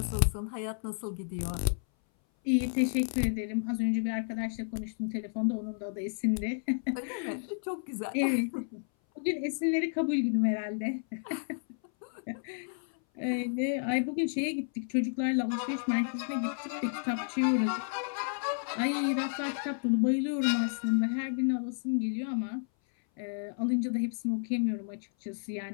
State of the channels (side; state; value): right; silent; 57 dB below the other